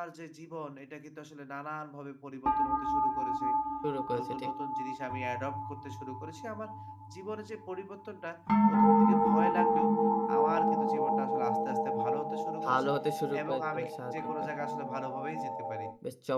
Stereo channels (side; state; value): both; identical; correlation 1.00